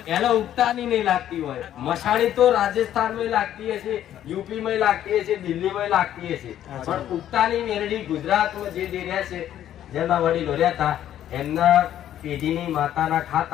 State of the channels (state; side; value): quieter; right; 11.4 dB